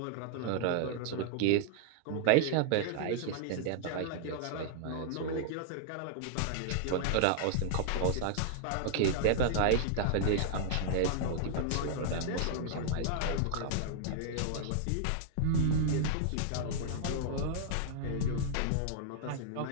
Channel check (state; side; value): different; both; correlation -0.01